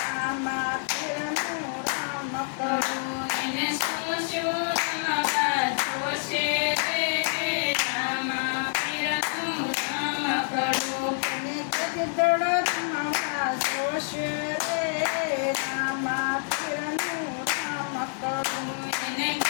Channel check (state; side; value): silent; right; 60 dB below the other